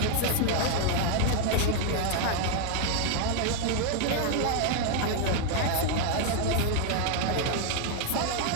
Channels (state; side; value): different; both; correlation 0.00